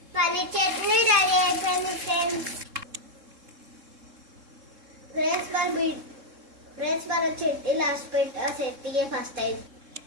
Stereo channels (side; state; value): left; late; 3.7 ms